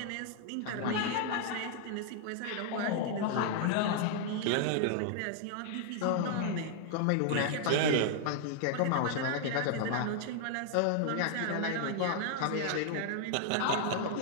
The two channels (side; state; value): both; different; correlation 0.00